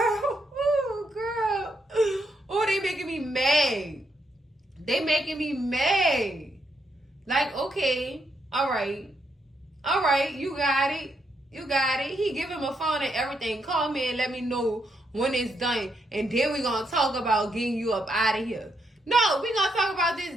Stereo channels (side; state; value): both; normal; correlation 0.79